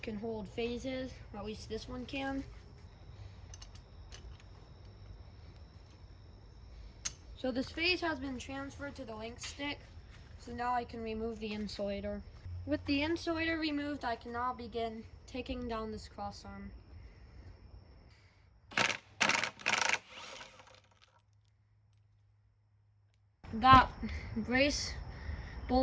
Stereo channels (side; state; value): both; identical; correlation 1.00